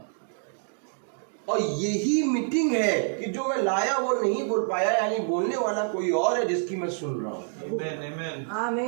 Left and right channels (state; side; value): silent; left; 60 dB below the other